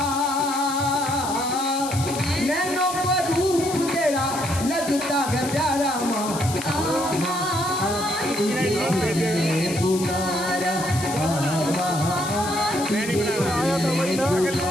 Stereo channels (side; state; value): left; noise; hiss, 9 dB below the sound